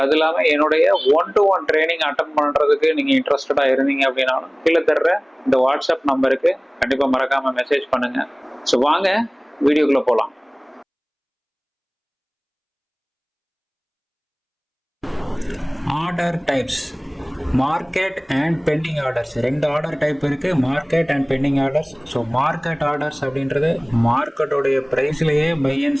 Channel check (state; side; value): identical; both; correlation 1.00